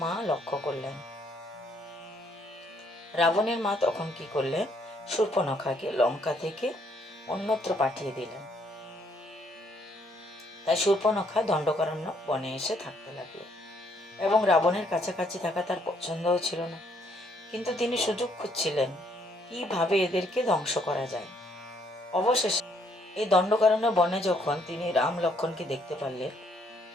মা লক্ষ্য করলেন। রাবণের মা তখন কি করলেন? শূর্পণখাকে লঙ্কা থেকে অন্যত্র পাঠিয়ে দিলেন। তাই শূর্পণখা দণ্ডকারণ্য বনে এসে থাকতে লাগলো, এবং রাবণের কাছাকাছি থাকা তার পছন্দও ছিল না। কিন্তু তিনি সুযোগ খুঁজছিলেন কিভাবে এদেরকে ধ্বংস করা যায়। অবশেষে এই দণ্ডকারণ্য বনে যখন তিনি রাম লক্ষ্মণকে দেখতে পারলেন,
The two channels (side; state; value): both; normal; correlation 0.69